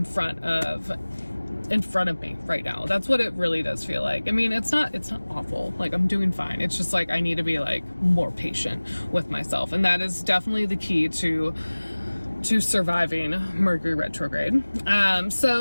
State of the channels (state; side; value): inverted; both; correlation -1.00